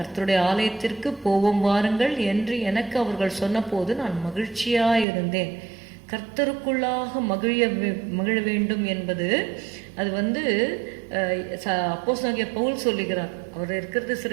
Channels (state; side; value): drops out; left; at 5.1 s